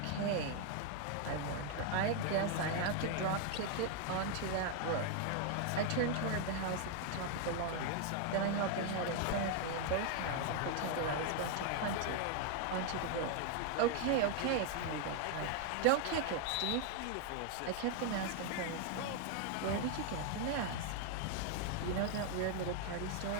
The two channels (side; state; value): both; different; correlation 0.00